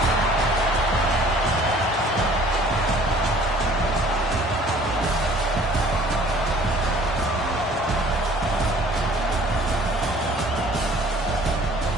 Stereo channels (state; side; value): normal; both; correlation 0.53